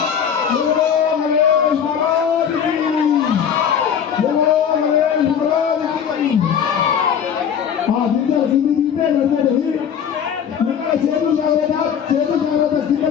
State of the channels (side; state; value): right; quieter; 8.0 dB